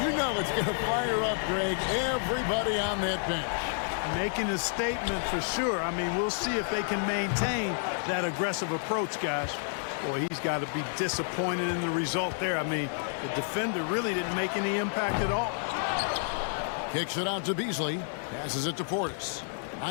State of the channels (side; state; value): right; silent; digital silence